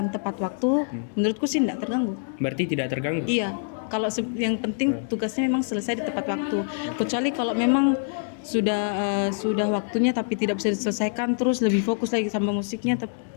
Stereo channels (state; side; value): silent; right; digital silence